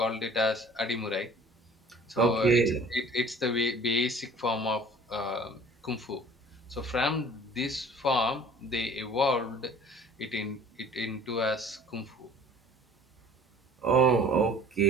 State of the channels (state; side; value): normal; both; correlation 0.49